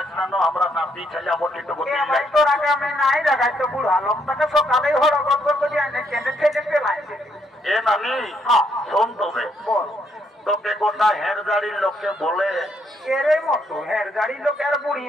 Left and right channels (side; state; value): both; normal; correlation 0.73